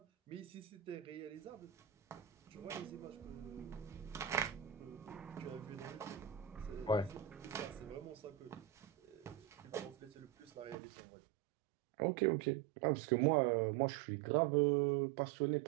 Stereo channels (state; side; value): drops out; left; at 10.8 s